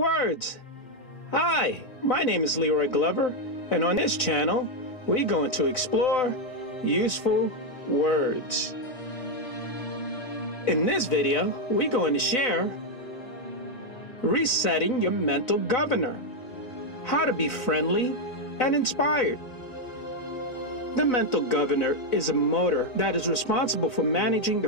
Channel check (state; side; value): late; right; 4.0 ms